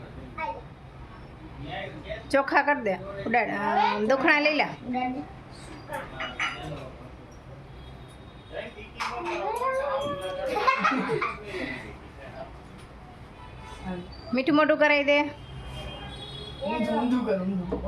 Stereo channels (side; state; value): both; identical; correlation 1.00